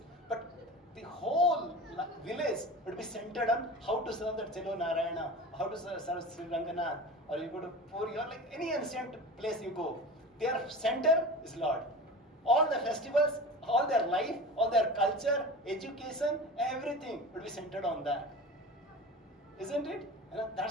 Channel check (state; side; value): normal; both; correlation 0.33